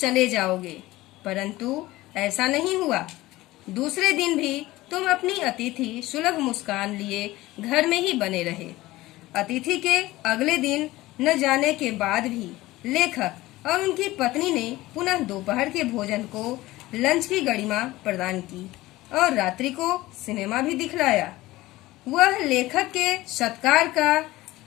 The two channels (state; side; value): quieter; right; 18.1 dB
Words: जाओगे, परंतु ऐसा नहीं हुआ। दूसरे दिन भी तुम अपनी अतिथि सुलभ मुस्कान लिए घर में ही बने रहे। अतिथि के अगले दिन न जाने के बाद भी लेखक और उनकी पत्नी ने पुनः दोपहर के भोजन को लंच की गरिमा प्रदान की और रात्रि को सिनेमा भी दिखलाया। वह लेखक के सत्कार का